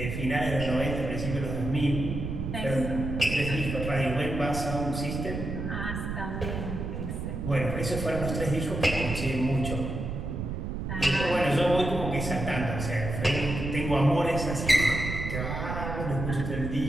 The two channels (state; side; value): noise; right; rumble, 4 dB below the sound